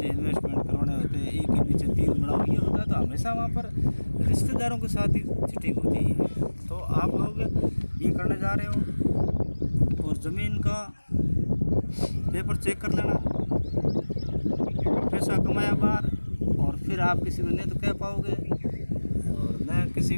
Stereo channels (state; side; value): inverted; both; correlation -1.00